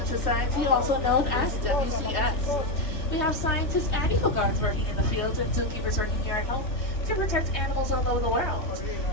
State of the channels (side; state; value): right; late; 3.2 ms